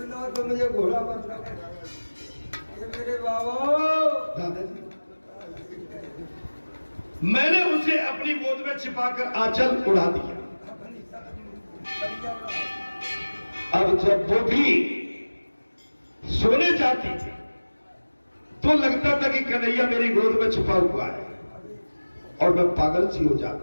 तो मुझे घोड़ा बनना। ये मेरे बाबा दादाजी, मैंने उसे अपनी गोद में छिपाकर आंचल उड़ा दिया। अब जब वो भी सोने जाती तो लगता था कि कन्हैया मेरी गोद में छुपा हुआ है और मैं पागल सी हो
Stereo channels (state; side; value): inverted; both; correlation -1.00